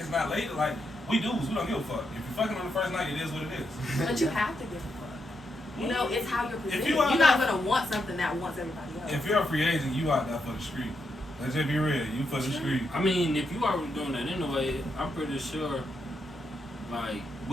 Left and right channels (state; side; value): normal; both; correlation 0.82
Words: not lady. Like we dudes, we don't give a fuck. If you're fucking on the first night, it is what it is. But you have to give a fuck. It's how you're presented. you You're are not not- gonna want something that wants everybody else. If you're a free agent, you out there for the street. Let's just be real. You for the street. I mean, if you already doing that anyway, I'm pretty sure, like,